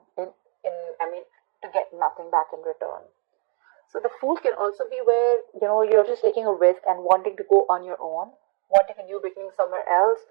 get nothing back in return. So the Fool can also be where, you're just taking a risk and wanting to go on your own, wanting a new beginning somewhere else,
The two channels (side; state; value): left; quieter; 38.6 dB